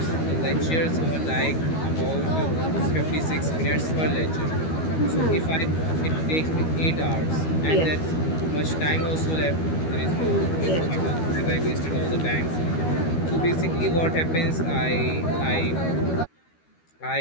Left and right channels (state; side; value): late; right; 13 ms